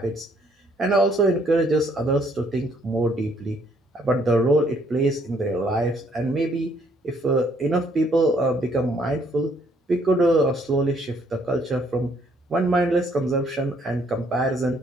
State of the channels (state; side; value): normal; both; correlation 0.66